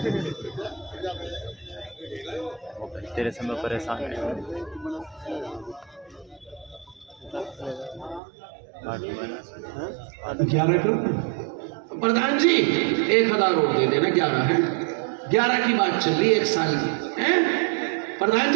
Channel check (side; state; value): left; drops out; at 8.2 s